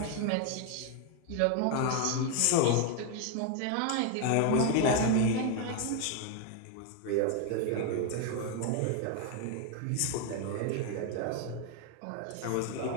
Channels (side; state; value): both; different; correlation 0.01